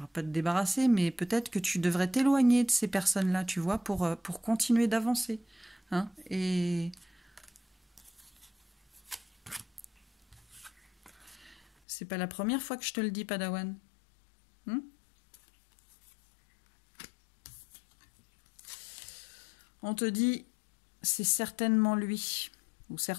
pas te débarrasser, mais peut-être que tu devrais t'éloigner de ces personnes-là, tu vois, pour continuer d'avancer. Hein, et c'est pas la première fois que je te le dis, Padawan. On te dit, c'est certainement lui ou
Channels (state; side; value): drops out; right; at 11.7 s